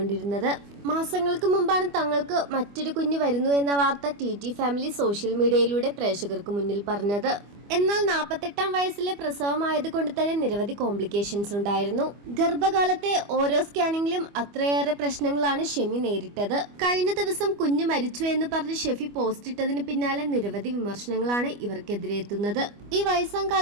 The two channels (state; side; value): late; left; 25 ms